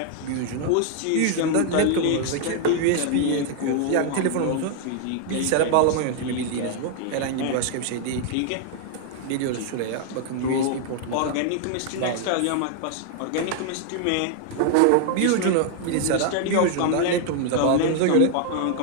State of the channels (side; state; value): both; different; correlation 0.00